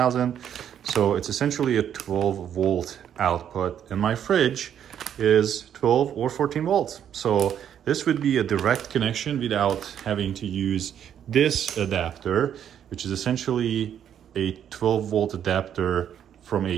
So it's essentially a 12 volt output, and my fridge is 12 or 14 volts. So this would be a direct connection without having to use this adapter, which is essentially a 12 volt adapter from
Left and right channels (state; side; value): quieter; left; 9.4 dB